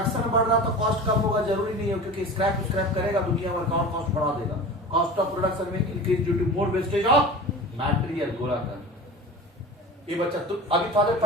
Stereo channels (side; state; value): both; normal; correlation 0.34